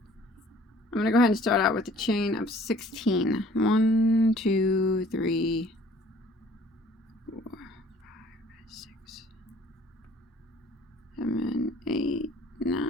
going to go ahead and start out with a chain of 16. 1, 2, 3, 4, 5, 6, 7, 8,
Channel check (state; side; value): normal; both; correlation 0.55